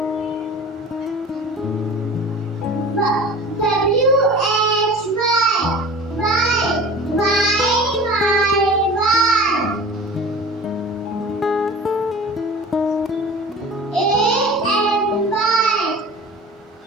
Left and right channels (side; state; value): both; normal; correlation 0.39